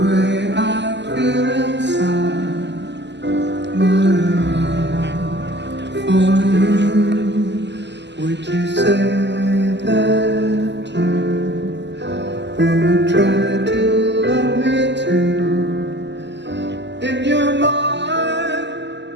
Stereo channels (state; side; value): late; left; 0.51 ms